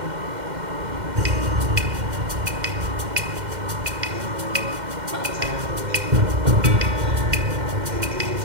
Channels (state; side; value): late; left; 2.1 ms